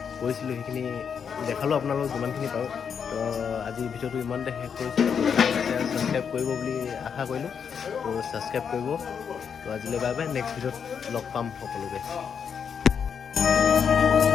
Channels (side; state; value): right; quieter; 7.0 dB